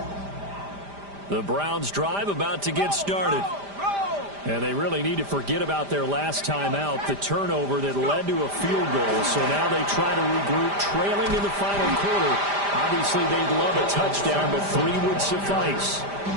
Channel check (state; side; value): late; left; 5.0 ms